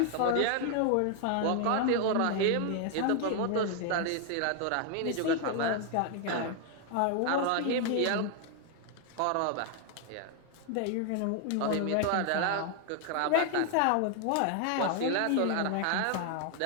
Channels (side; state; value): both; different; correlation 0.00